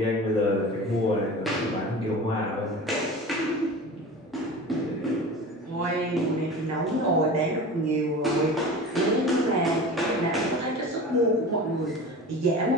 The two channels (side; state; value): both; normal; correlation 0.34